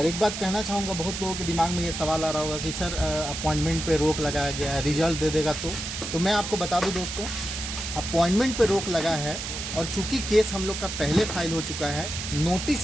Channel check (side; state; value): right; noise; hiss, 6 dB below the sound